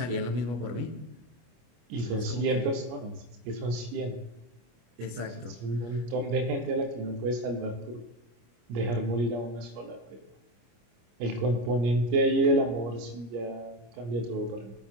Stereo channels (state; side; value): late; left; 25 ms